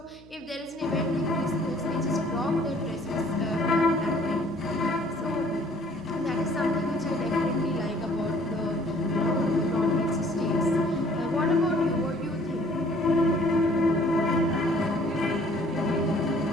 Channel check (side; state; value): left; noise; hum, 25 dB below the sound